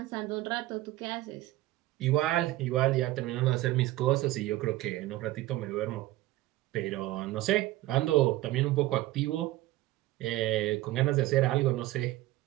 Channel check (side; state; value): left; quieter; 16.8 dB